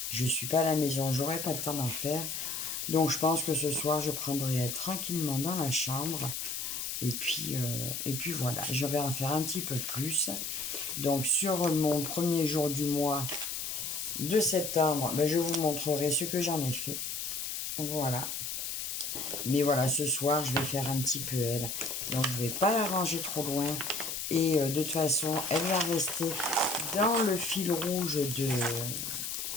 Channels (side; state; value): left; noise; hiss, 4 dB below the sound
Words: Je ne suis pas à la maison, j'aurai pas le temps d'en faire. Donc, je pense que ce soir, je prendrai tranquillement dans la chambre. Et puis voilà, je vais en faire un petit peu plus. Donc, sur mon premier jour du mois de septembre, ben, je vous montrerai ce que j'en ai fait. Voilà. Mais voilà, ce soir, je vais faire un petit peu elle. Donc, je ne vais pas la ranger trop loin. Et de toute façon, elle va rester dans le fil rouge